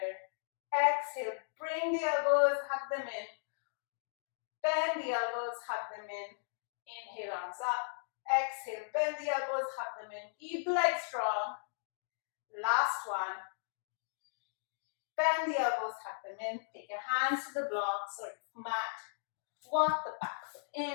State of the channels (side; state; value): right; silent; digital silence